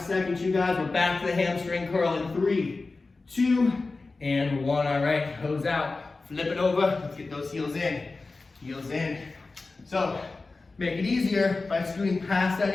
seconds, you guys. We're back to the hamstring curl in 3, 2, and 1. All right, hose out. Flip it over. Let's get those heels in. Heels in. So, make it easier by scooting past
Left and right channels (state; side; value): quieter; right; 3.7 dB